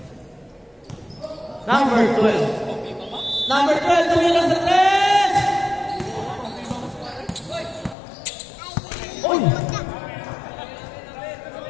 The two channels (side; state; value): right; drops out; at 8.0 s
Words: Number 12. Number 12, tumila sa 3! Uy!